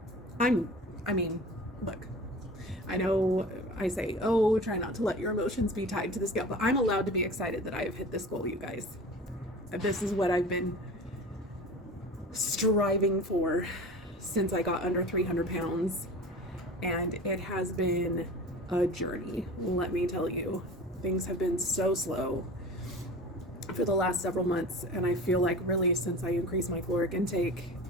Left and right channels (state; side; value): normal; both; correlation 0.37